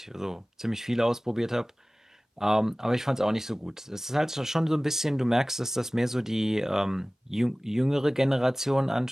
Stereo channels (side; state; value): both; normal; correlation 0.98